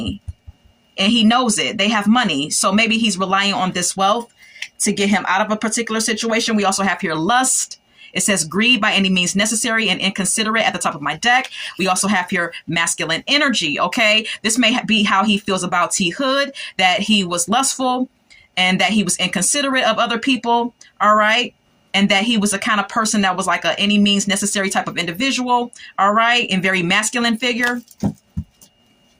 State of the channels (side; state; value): both; identical; correlation 1.00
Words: and he knows it. They have money. So maybe he's relying on this wealth to get him out of a particular situation. We also have here lust. It says greed by any means necessary and inconsiderate at the top of my deck. We also have here masculine energy. Okay. This may be how he feels about T. Hood, that he was lustful and that he was inconsiderate of other people. All right. And that he was a kind of person that was like a any means necessary type of individual. All right. And very masculine figure.